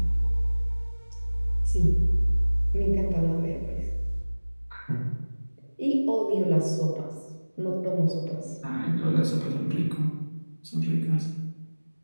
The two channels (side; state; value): both; inverted; correlation -1.00